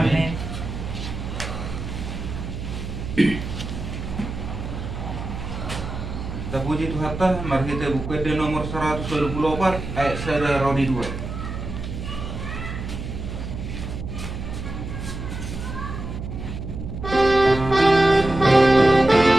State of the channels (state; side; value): noise; right; hum, 7 dB below the sound